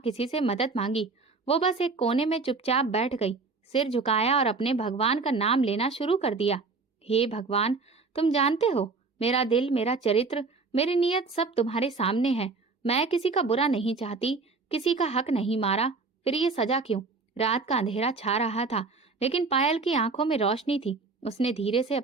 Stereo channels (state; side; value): quieter; left; 4.2 dB